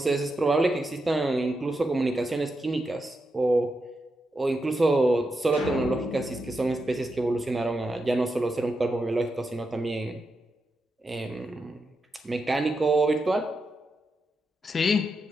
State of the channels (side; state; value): both; normal; correlation 0.86